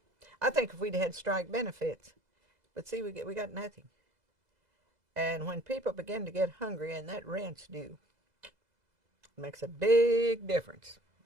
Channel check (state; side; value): late; left; 2.0 ms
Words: I think if we'd had strike benefits, but see, we got nothing. And when people begin to get hungry and that rent's due, it makes a big difference.